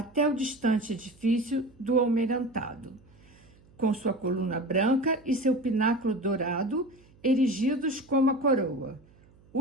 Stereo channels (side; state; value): right; noise; hum, 28 dB below the sound